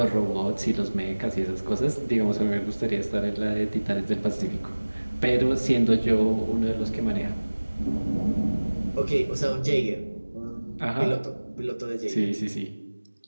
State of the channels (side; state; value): both; inverted; correlation -1.00